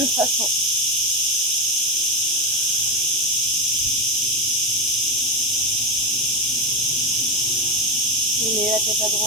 façon. Tournez la tête à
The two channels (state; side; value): normal; both; correlation 0.12